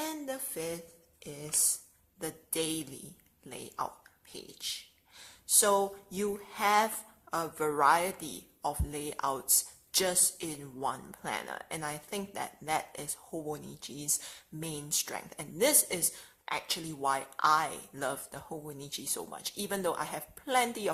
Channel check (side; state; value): both; identical; correlation 1.00